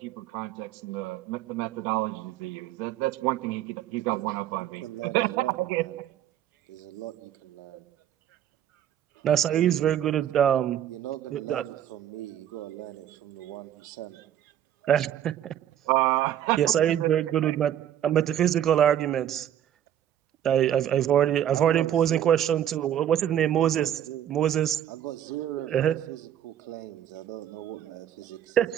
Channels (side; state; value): left; quieter; 10.7 dB